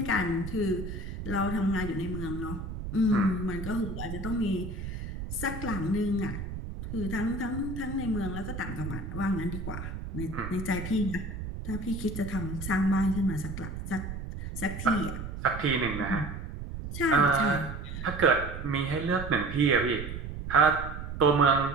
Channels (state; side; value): noise; right; rumble, 7 dB below the sound